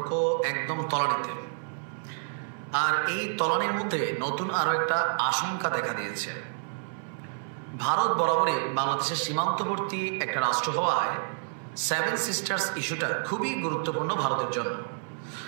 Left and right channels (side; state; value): left; silent; 59 dB below the other